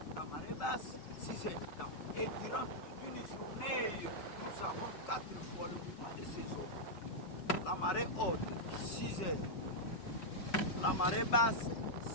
la marée basse, 6 heures du temps. Et durant une journée, nous avons 4 fois le mouvement de ces eaux. La marée haute, 6 heures. La marée basse,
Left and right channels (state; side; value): late; right; 5.4 ms